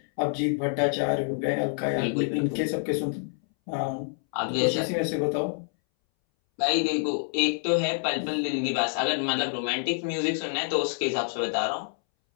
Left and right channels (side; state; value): right; silent; 60 dB below the other